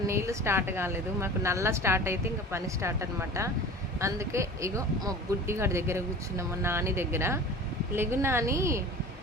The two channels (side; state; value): both; normal; correlation 0.39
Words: నీళ్ళు స్టార్ట్ కాలేదు, మాకు నల్ల స్టార్ట్ అయితే ఇంకా పని స్టార్ట్ అనమాట. అందుకే ఇగో మా బుడ్డిగాడి దగ్గర కూర్చున్నాం, మా నాని దగ్గర. లెగు నాని,